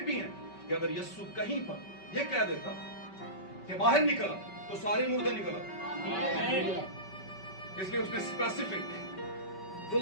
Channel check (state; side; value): late; right; 5.3 ms